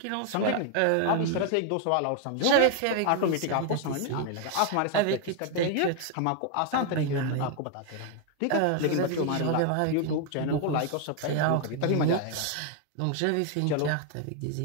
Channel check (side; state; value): both; different; correlation 0.00